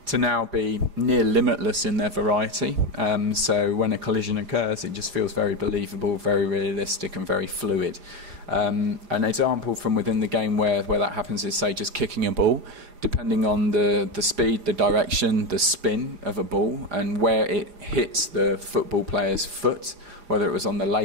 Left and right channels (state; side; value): late; left; 4.9 ms